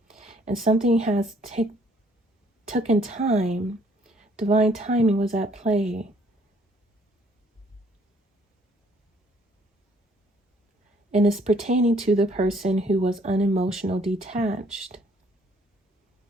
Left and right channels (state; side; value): normal; both; correlation 0.63